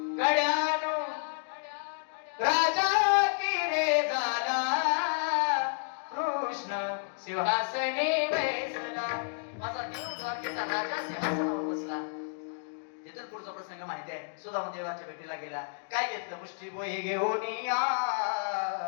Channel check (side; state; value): right; silent; digital silence